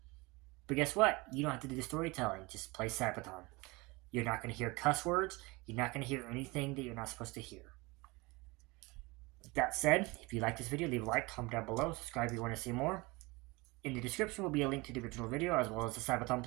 But guess what? You don't have to do the storytelling. Just play Sabaton. You're not going to hear cuss words. You're not going to hear anything that you're not supposed to hear. With that said, if you like this video, leave a like, comment down below, subscribe if you want to see more. In the description will be a link to the original video as well as the Sabaton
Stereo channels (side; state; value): left; quieter; 24.3 dB